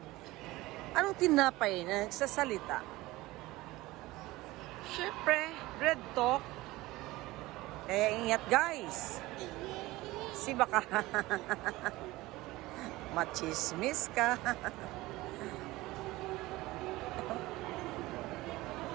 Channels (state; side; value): quieter; left; 19.2 dB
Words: Anong tinapay na nagsasalita? Siyempre, bread talk. Kaya ingat guys. Si baka machismis ka.